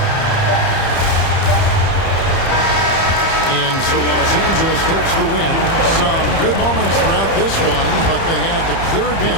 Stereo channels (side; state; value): right; late; 30 ms